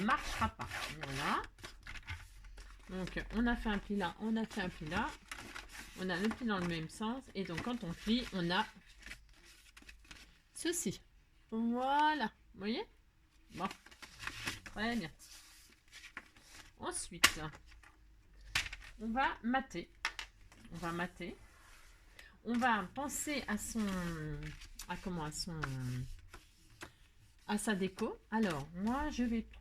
marchera pas. Voilà. Donc, on a fait un pli là, on a fait un pli là. On a le pli dans le même sens. Et donc, quand on plie, on a ceci. Voilà. Vous voyez? Bon. Très bien. Ensuite, on va mater. On va mater. On va penser à sa déco. Alors, moi, je vais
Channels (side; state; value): both; identical; correlation 1.00